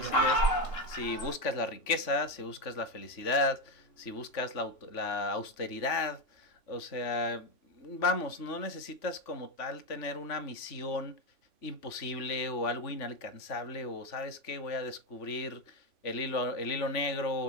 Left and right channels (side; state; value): right; late; 3.5 ms